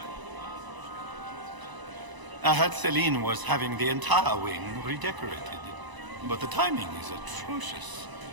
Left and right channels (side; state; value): left; late; 1.0 ms